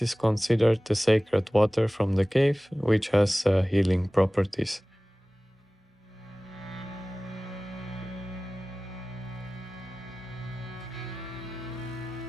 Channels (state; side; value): normal; both; correlation 0.98